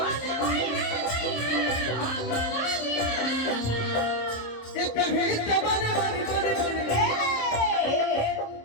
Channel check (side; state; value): right; late; 26 ms